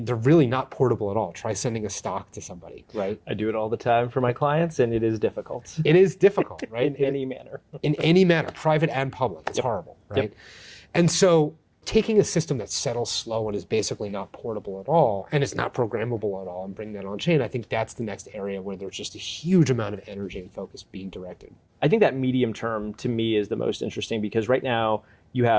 they're really not portable at all. Try sending a stock to somebody, right? I do it all the time for my clients, and it is difficult. It is difficult, right? In any manner. In any manner, private and public. It's horrible, right? Yep. And so taking a system that settles slow and is basically not portable at all, and it's not programmable at all, and bring that on chain, I think that's the next area where there's just a huge amount of energy and focus being directed. I think that medium term to me is the most interesting because right now you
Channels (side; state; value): both; identical; correlation 1.00